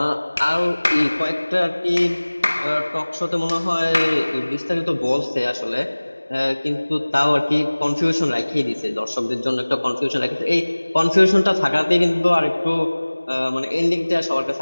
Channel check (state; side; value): inverted; both; correlation -1.00